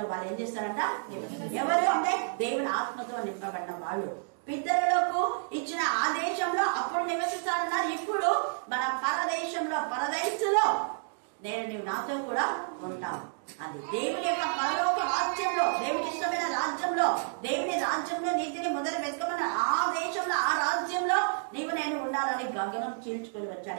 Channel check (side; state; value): left; silent; digital silence